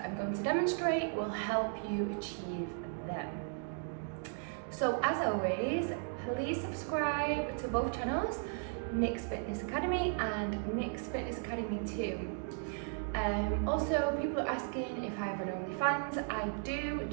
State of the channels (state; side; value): silent; left; 54 dB below the other